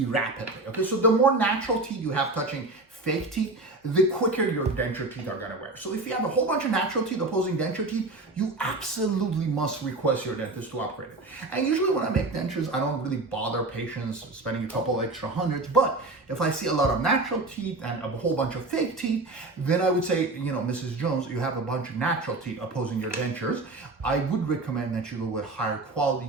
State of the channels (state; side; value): quieter; left; 3.0 dB